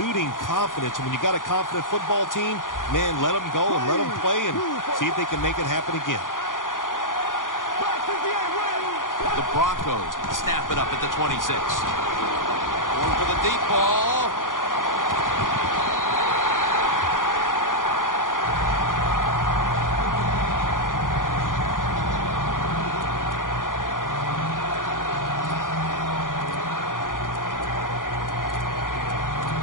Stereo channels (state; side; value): late; right; 0.89 ms